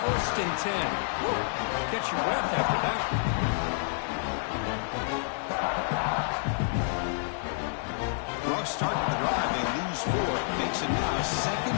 First and 10. Woo. Catch your breath after that. Rough start to the drive. They lose 4. Makes it now second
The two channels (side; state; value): right; silent; digital silence